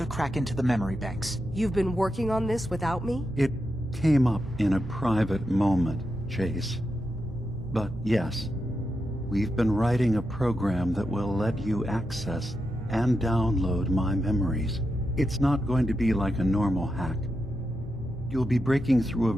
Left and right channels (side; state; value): both; normal; correlation 0.87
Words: crack into the memory banks. You've been working on this without me? It came up in a private moment, Chase. But yes, we've been writing a program that will let you access and download my memories. It's not going to be like a normal hack. You'll be breaking through a